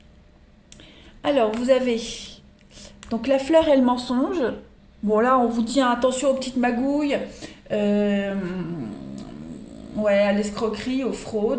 Alors, vous avez donc la fleur et le mensonge. Bon, là, on vous dit hein, attention aux petites magouilles, ouais, à l'escroquerie, aux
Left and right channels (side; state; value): both; identical; correlation 1.00